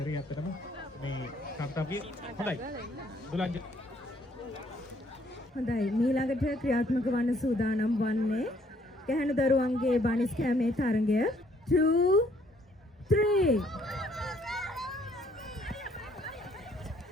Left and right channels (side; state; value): both; normal; correlation 0.65